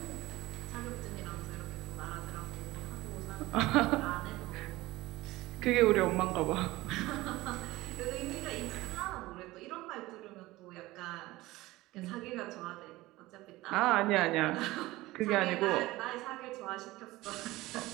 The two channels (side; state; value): left; quieter; 18.8 dB